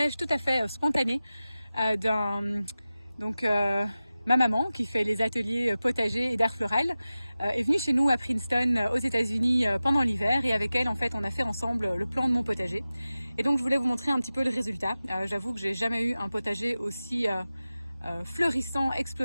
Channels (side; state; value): both; inverted; correlation -0.95